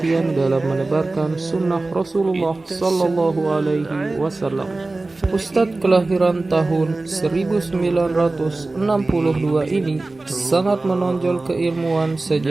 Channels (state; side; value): quieter; left; 3.2 dB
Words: dalam menebarkan sunnah Rasulullah Sallallahu Alaihi Wasallam. Ustadz kelahiran tahun 1962 ini sangat menonjol keilmuan